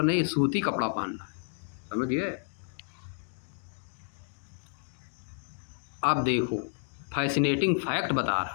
नहीं, सूती कपड़ा पहनना है। समझ गए? अब देखो फैसिनेटिंग फैक्ट बता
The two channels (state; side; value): silent; right; digital silence